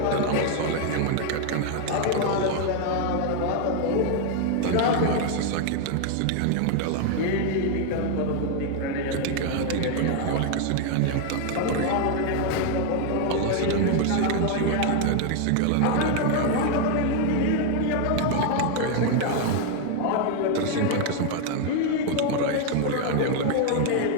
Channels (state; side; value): different; both; correlation 0.00